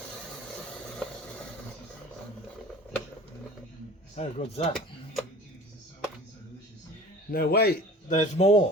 How good's that? No, wait, there's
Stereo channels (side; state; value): both; normal; correlation 0.42